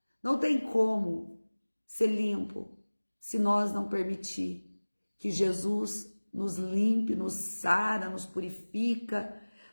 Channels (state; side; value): inverted; both; correlation -1.00